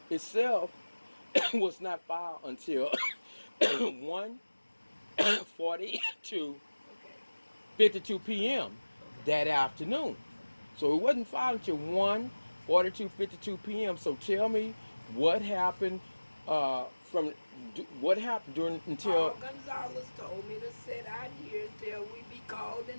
itself was not filed until 1:42 Okay, 52 p.m. okay. that afternoon. So it wasn't filed until 1:42 52 p.m. So tell me what happened from what happened during Paul until Gonzalez told me to sit out here until we be called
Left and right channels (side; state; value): both; inverted; correlation -1.00